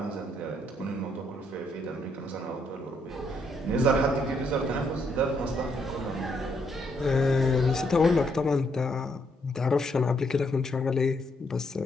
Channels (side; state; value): both; normal; correlation 0.74